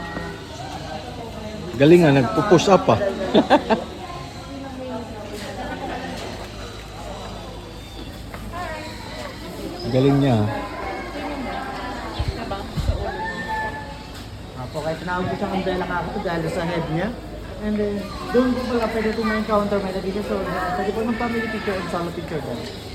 Galing nga, nagpo-push up ah. Galing niya. Po, kahit tinawag ko siyang umbrella kakito dahil sa head niya. And then, doon po pala pwede po ma-encounter may nagiging so, pwede po ng family picture and solo picture doon.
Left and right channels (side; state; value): both; identical; correlation 1.00